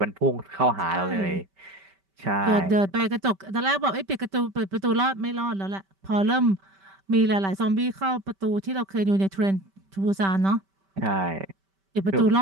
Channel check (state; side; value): late; left; 5.2 ms